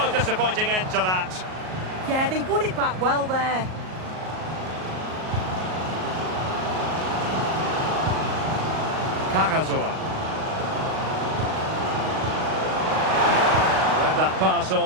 disappointing end to that. Yeah, they won it back well there. Carrasor. That pass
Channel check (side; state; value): left; late; 38 ms